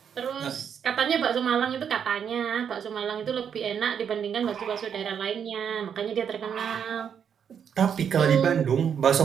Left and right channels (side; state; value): left; quieter; 7.8 dB